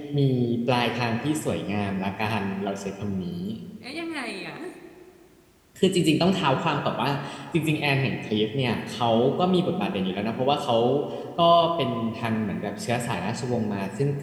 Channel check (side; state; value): both; identical; correlation 1.00